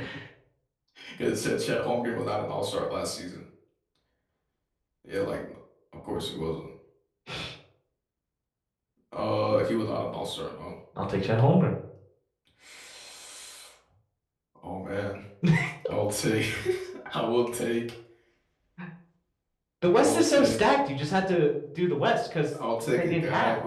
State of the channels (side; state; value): both; identical; correlation 1.00